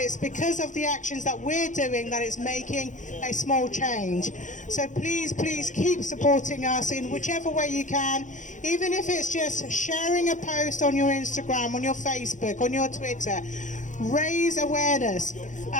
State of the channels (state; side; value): late; right; 0.36 ms